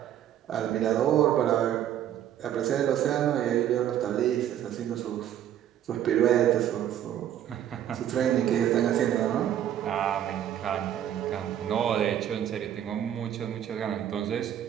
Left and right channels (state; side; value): quieter; left; 10.8 dB